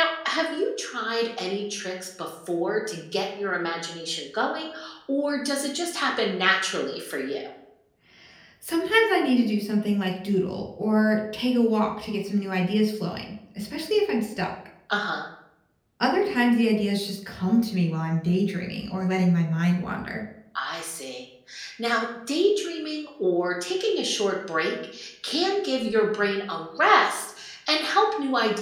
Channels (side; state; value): both; identical; correlation 1.00